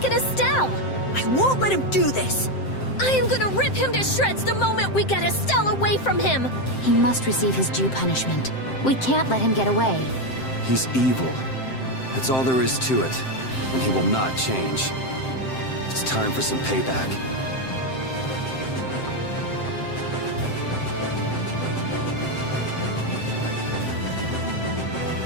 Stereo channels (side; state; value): right; late; 7.7 ms